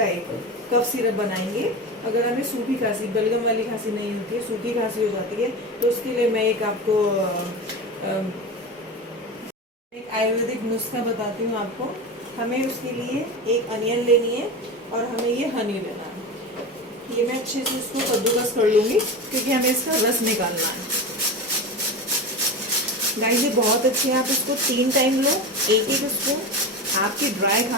एक कफ सिरप बनाएंगे। अगर हमें सूखी खांसी, बलगम वाली खांसी नहीं होती है, सूखी खांसी हो जाती है, तो उसके लिए मैं एक आपको एक आयुर्वेदिक नुस्खा बताती हूँ आपको। हमें उसके लिए एक अनियन लेनी है और हमें ये हनी लेना है। ये मैं अच्छे से इसको कद्दूकस कर लूँगी क्योंकि हमें इसका रस निकालना है। गाइस ये बहुत अच्छे है, आप इसको 3 टाइम लो, एक एक स्पून, आपकी ड्राई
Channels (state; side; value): normal; both; correlation 0.25